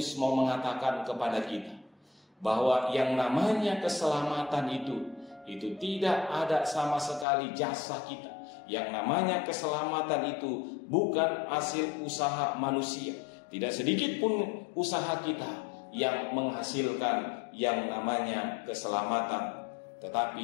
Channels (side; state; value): right; drops out; at 7.2 s